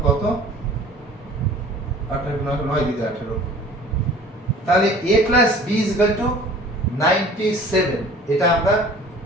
কত? 9 দিয়ে 18। তাহলে a plus b is equal to 97। এটা আমরা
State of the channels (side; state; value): both; normal; correlation 0.47